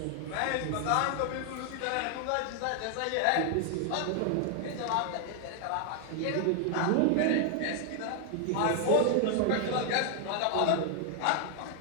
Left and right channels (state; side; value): different; both; correlation 0.00